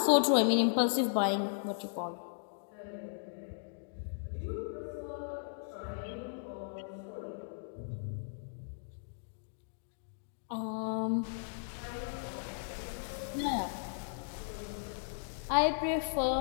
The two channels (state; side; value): silent; right; digital silence